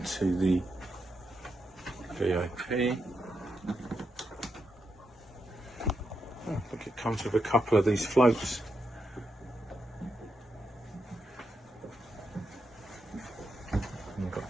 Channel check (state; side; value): normal; both; correlation 0.84